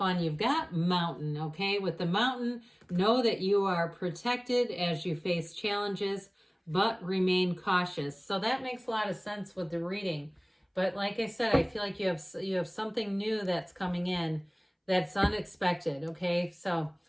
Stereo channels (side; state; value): both; identical; correlation 1.00